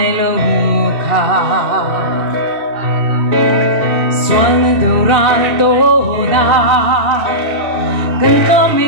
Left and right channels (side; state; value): left; late; 2.6 ms